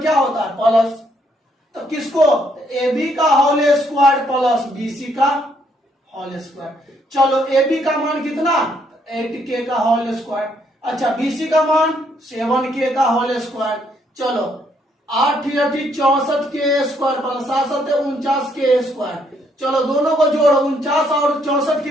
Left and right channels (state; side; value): normal; both; correlation 0.71